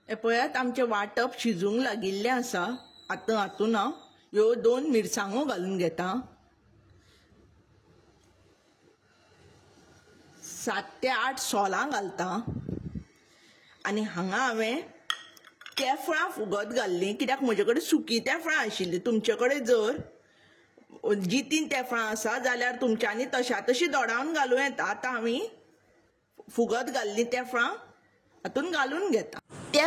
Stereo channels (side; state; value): both; identical; correlation 1.00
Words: हें पळयात आमचें वांटप शिजूंक लागिल्लें आसा। आतां हातून हांव ह्यो 2 मिरसांगो घालून घेता। 7 ते 8 सोलां घालता आनी हांगा हांवें तेफळां फुगत घाल्लीं, कित्याक म्हजे कडेन सुकी तेफळां आशिल्लीं। तुमचे कडेन जर जितीं तेफळां आसा जाल्यार तुमच्यांनी तशा तशीं दोडावन घालूं येता। आतां आमी फुगत घाल्लीं तेफळां हातून घालून घेता।